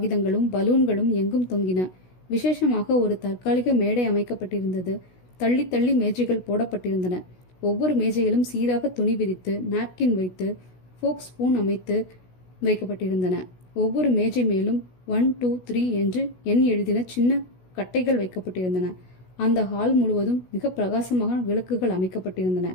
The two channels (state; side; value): late; right; 16 ms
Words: பலூன்களும் எங்கும் தொங்கின. விசேஷமாக ஒரு தற்காலிக மேடை அமைக்கப்பட்டிருந்தது. தள்ளி தள்ளி மேஜைகள் போடப்பட்டிருந்தன. ஒவ்வொரு மேஜையிலும் சீராக துணி விரித்து நாப்கின் வைத்து ஃபோக் ஸ்பூன் அமைத்து வைக்கப்பட்டிருந்தன. ஒவ்வொரு மேஜை மேலும் 1, 2, 3 என்று எண் எழுதின சின்ன கட்டைகள் வைக்கப்பட்டிருந்தன. அந்த ஹால் முழுவதும் மிக பிரகாசமாக விளக்குகள் அமைக்கப்பட்டிருந்தன.